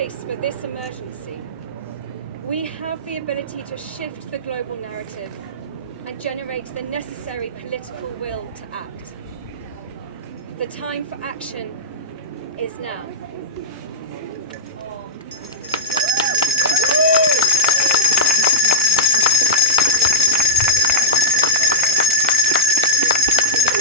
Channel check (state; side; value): normal; both; correlation -0.08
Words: for this emergency, we have the ability to shift the global narrative and generate the necessary political will to act. The time for action is now.